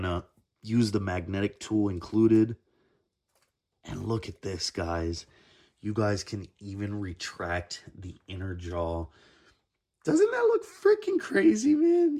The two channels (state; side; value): identical; both; correlation 1.00